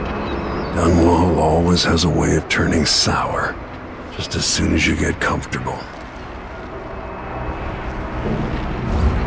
Dunwall always has a way of turning sour, just as soon as you get comfortable.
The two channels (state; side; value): identical; both; correlation 1.00